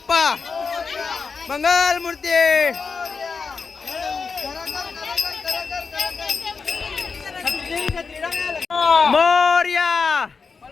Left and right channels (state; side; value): quieter; right; 5.0 dB